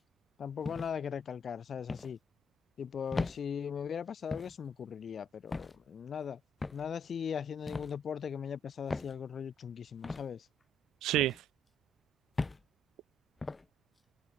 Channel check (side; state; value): both; normal; correlation 0.70